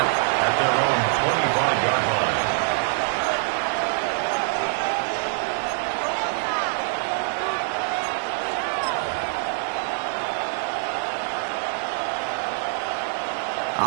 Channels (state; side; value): silent; left; digital silence